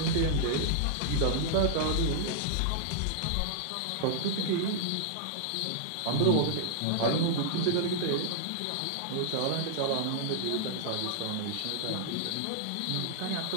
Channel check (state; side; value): different; both; correlation -0.01